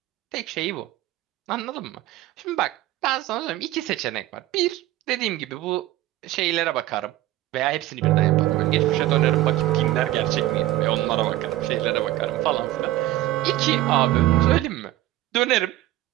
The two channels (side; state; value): left; quieter; 15.7 dB